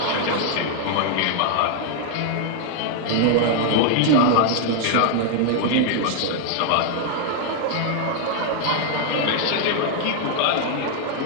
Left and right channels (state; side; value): different; both; correlation 0.00